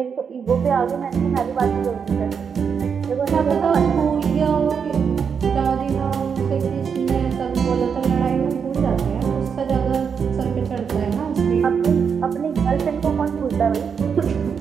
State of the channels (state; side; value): quieter; left; 6.6 dB